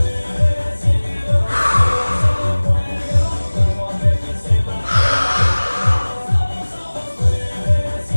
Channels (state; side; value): inverted; both; correlation -1.00